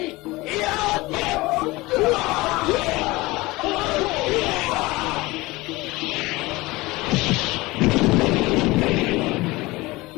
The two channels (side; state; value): right; quieter; 21.2 dB